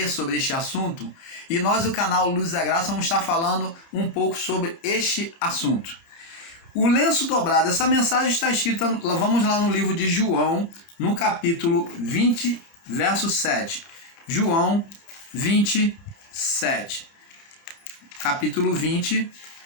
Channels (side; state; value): right; late; 30 ms